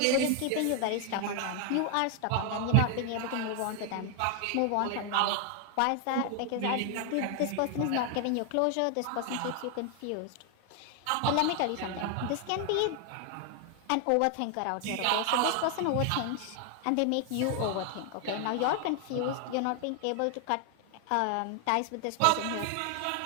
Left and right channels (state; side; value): different; both; correlation 0.00